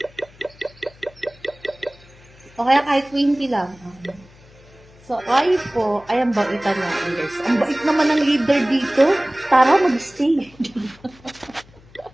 O kaya kahit 20 lang. So, ay po, ay ang baitan natin guys. Ang bait naman ng leader dito. Tara, mag-stay.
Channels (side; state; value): left; noise; hum, 25 dB below the sound